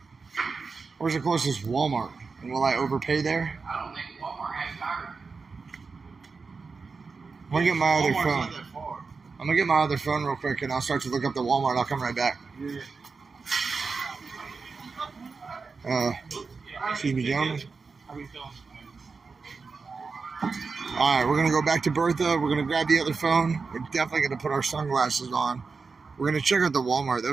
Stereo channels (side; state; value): left; quieter; 4.6 dB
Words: Where's the closest Walmart? And will I overpay there? I don't think Walmart has tires. I'm going to get my other Walmart's phone. not that far. I'm going to get my other phone real quick, and I'll start to look up the Walmart. I'll come right back. Yeah. Excuse me, gentlemen. All right, we're going to go back to Bertha. We're going to grab the other phone. We're definitely going to put our sunglasses on. We're going to check out the Walmart. That